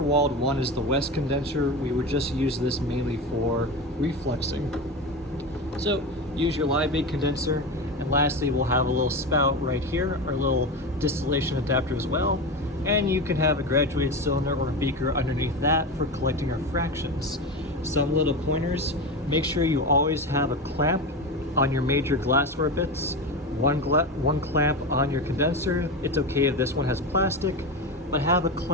walled one is the West condenser. We would just use this mainly for refluxing. So use your Liebig condenser. And lastly, we'll have a little spout right here, our little distillation adapter as well. And you can have a graduated cylinder or a beaker underneath that for collecting our fractions. Some little pointers: make sure you always have a clamp on your major glassware bits. One clamp on your condenser. It's okay if this one has plastic, but have a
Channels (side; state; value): both; normal; correlation 0.22